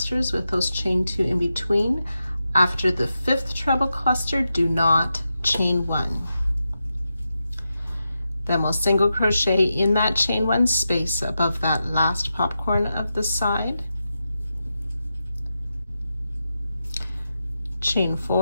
with those chain 2 in between. After the 5th treble cluster, do not chain 1. Then we'll single crochet in that chain 1 space above that last popcorn of the side, chain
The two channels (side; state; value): both; inverted; correlation -0.89